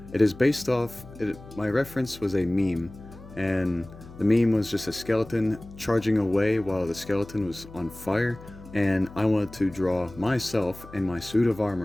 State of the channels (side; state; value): left; noise; hum, 18 dB below the sound